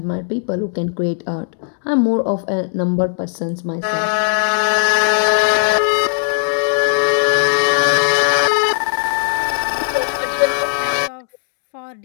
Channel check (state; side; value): silent; right; digital silence